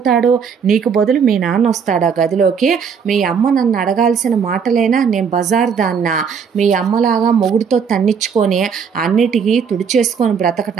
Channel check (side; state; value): left; quieter; 6.5 dB